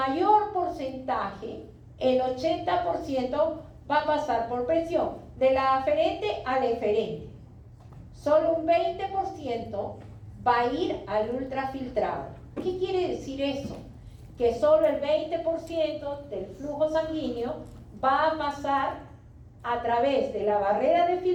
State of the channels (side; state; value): both; identical; correlation 1.00